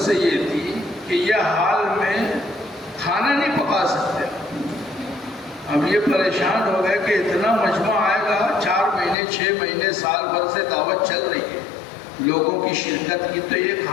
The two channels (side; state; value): right; drops out; at 9.2 s